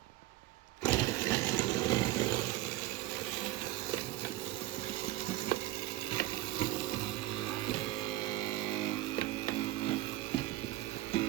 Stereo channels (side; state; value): left; quieter; 16.5 dB